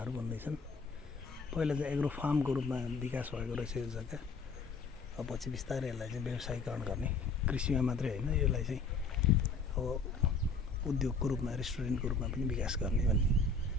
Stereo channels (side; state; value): right; quieter; 4.2 dB